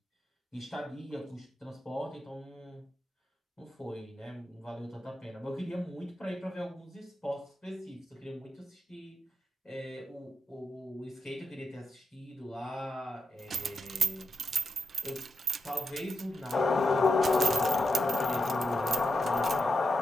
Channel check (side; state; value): both; normal; correlation 0.85